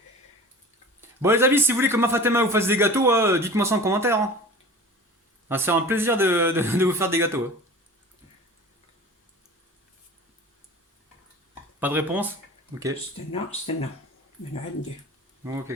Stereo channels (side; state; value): both; normal; correlation 0.39